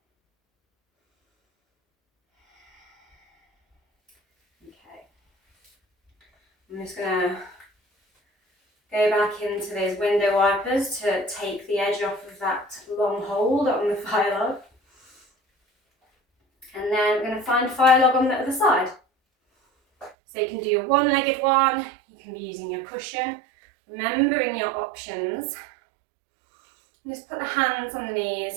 I'm just going to go back into those window wipers to take the edge off of that long hold on the fire log. And then we're going to find a fire log on the other side. So you can do your one-legged one, you can be using your cushion, remembering your options. And just put the hands on the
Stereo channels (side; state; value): left; drops out; at 20.1 s